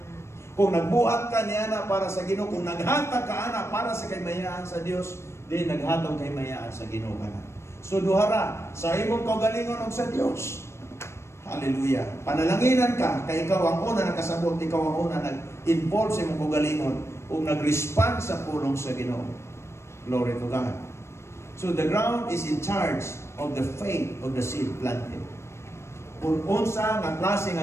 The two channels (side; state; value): right; late; 0.13 ms